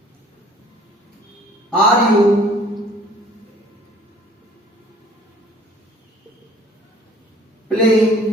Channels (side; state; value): both; normal; correlation 0.54